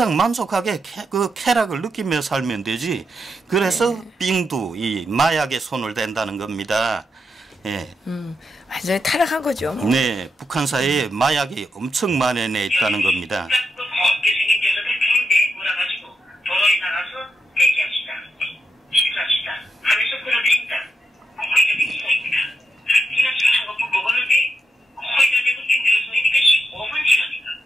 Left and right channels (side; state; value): both; normal; correlation 0.84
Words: 만족하게 그 쾌락을 느끼며 살면 되지. 그래서 빙두, 이 마약에 손을 댄다는 겁니다. 완전히 타락한 거죠. 뭐. 네, 북한 사회에 마약이 엄청 만연해 있다는 겁니다.